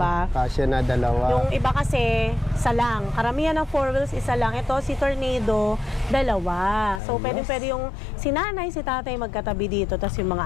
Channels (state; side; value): drops out; right; at 7.0 s